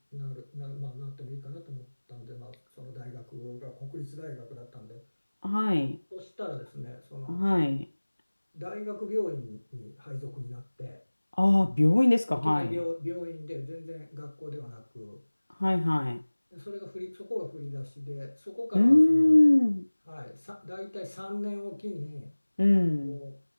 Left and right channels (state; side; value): inverted; both; correlation -1.00